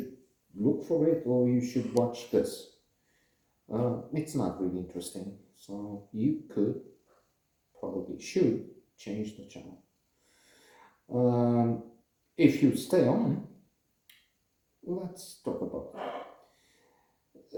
look for it or you should watch this. It's not really interesting, so you could, probably should, change the channel. If you stay on, let's talk about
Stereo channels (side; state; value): both; identical; correlation 1.00